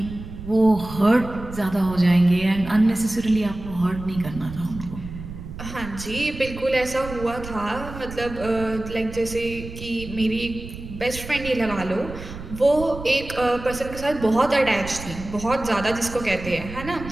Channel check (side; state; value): right; noise; rumble, 12 dB below the sound